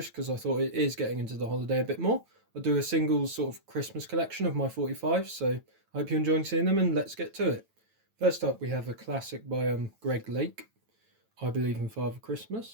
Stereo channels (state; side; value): late; left; 9.1 ms